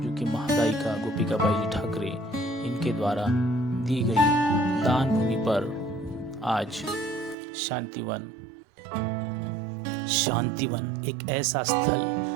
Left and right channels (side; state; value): left; drops out; at 7.4 s